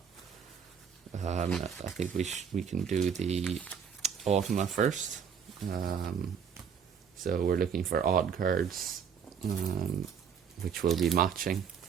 I think we can do the Automa first. So we're looking for odd cards, which will be matching.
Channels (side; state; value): left; quieter; 7.2 dB